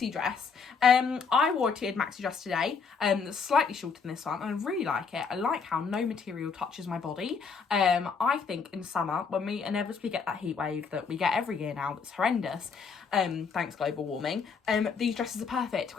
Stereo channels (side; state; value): right; quieter; 5.5 dB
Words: dress. I wore a tiered maxi dress today, that's slightly shorter than this one, and I really like it. I like how no material touches my body. I think in summer, when we inevitably get that heat wave that we get every year now, that's horrendous, thanks global warming, these dresses are perfect